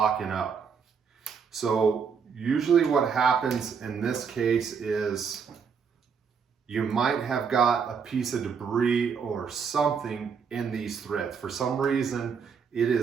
up. So usually what happens in this case is you might have got a piece of debris or something in these threads. For some reason, it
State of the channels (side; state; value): left; quieter; 6.3 dB